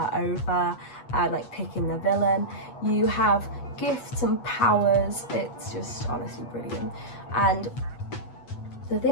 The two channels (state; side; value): late; right; 8.2 ms